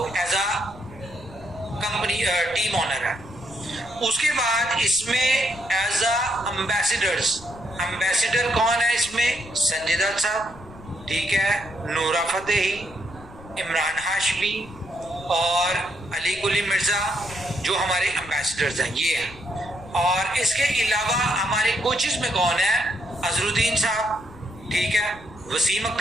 as a company team owner है। उसके बाद इसमें एज अ एम्बेसडर कौन है इसमें, संजय दत्त साहब, ठीक है, नूरा फतेही, इमरान हाशमी और अली कुली मिर्जा जो हमारे एम्बेसडर्स हैं, ये हैं। और इसके अलावा हमारे कोचेस में कौन है, अजरुद्दीन साहब, ठीक है, वसीम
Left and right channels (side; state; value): left; noise; rumble, 19 dB below the sound